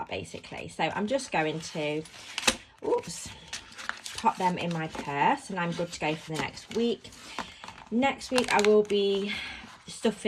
basically. So I'm just going to, pop them in my purse, and I'm good to go for the next week. Next week I will be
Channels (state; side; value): identical; both; correlation 1.00